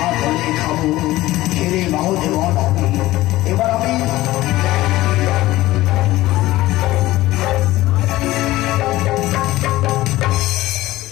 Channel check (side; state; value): right; quieter; 17.1 dB